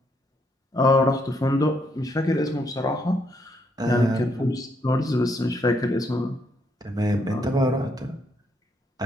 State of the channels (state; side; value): normal; both; correlation 0.74